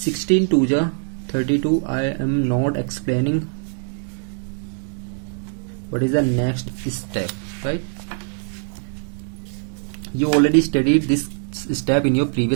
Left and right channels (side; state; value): left; silent; digital silence